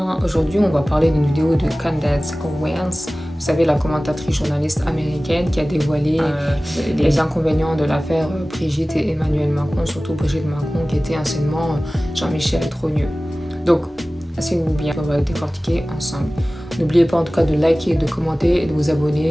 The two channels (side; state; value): both; normal; correlation 0.97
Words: Aujourd'hui, on va parler d'une vidéo de Candace Owens. Vous savez, la commentatrice journaliste américaine qui a dévoilé les inconvénients de l'affaire Brigitte et Emmanuel Macron, surtout Brigitte Macron qui était anciennement Jean-Michel Trogneux. Donc, asseyez-vous bien, on va décortiquer ensemble. N'oubliez pas en tout cas de liker, de commenter et de vous